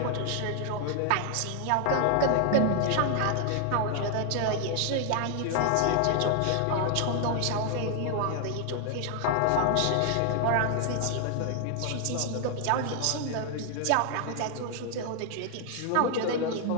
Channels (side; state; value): both; different; correlation 0.00